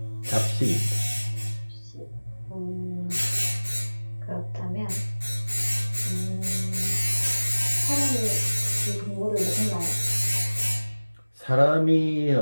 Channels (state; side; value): inverted; both; correlation -1.00